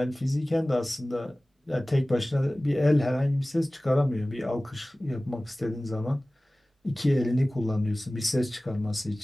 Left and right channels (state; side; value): normal; both; correlation 0.98